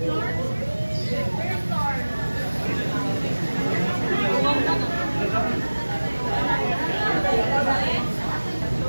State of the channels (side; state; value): both; inverted; correlation -1.00